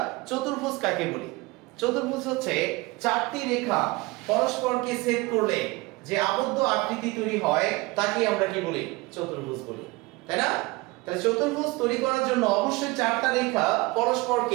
চতুর্ভুজ কাকে বলি? চতুর্ভুজ হচ্ছে চারটি রেখা পরস্পরকে ছেদ করলে যে আবদ্ধ আকৃতি তৈরি হয় তাকে আমরা কি বলি? চতুর্ভুজ বলি, তাই না? তাহলে চতুর্ভুজ তৈরি করার জন্য অবশ্যই চারটা রেখা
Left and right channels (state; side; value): quieter; left; 23.0 dB